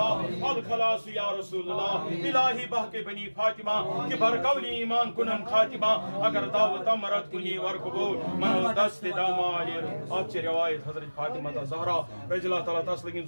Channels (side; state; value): both; inverted; correlation -1.00